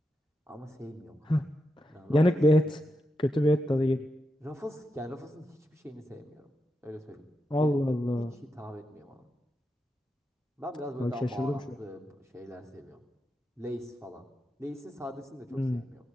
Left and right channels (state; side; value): normal; both; correlation 0.87